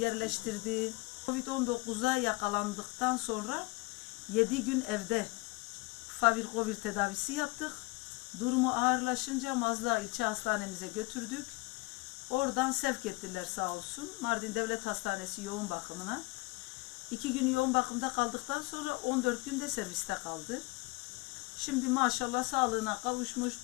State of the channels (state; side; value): quieter; right; 24.4 dB